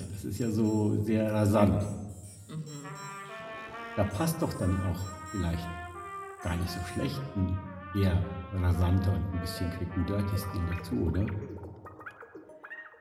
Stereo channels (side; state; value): both; identical; correlation 1.00